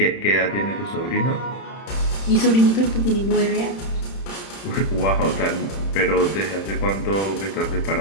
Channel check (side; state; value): right; late; 31 ms